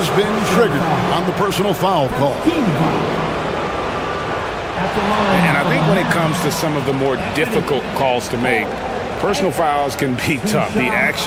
been triggered on the personal foul call. And I think when it comes to some of the more difficult calls to make, personal fouls can be tough. The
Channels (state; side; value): identical; both; correlation 1.00